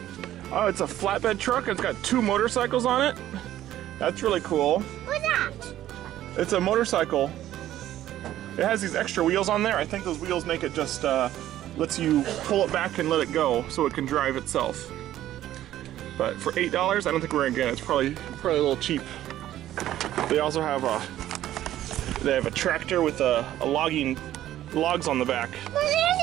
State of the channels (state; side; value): quieter; left; 13.1 dB